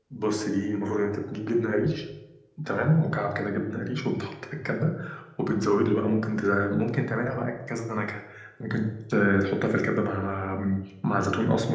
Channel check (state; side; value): identical; both; correlation 1.00